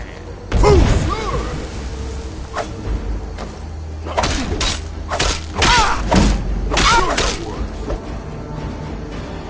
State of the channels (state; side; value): identical; both; correlation 1.00